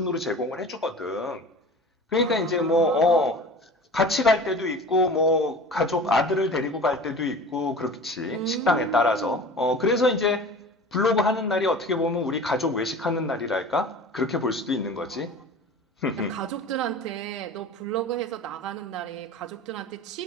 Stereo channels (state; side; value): normal; both; correlation 0.38